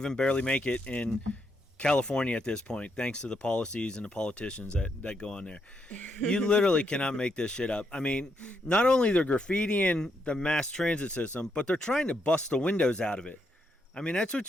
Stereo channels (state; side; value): normal; both; correlation 0.78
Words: barely make it in California at this point, thanks to the policies and the politicians that go on there. You literally cannot make this shit up. I mean, not only they're graffitiing the mass transit system, but they're trying to bust the windows out of it. I mean, that's